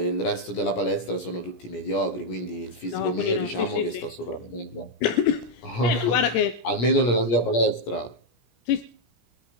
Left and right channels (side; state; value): right; late; 17 ms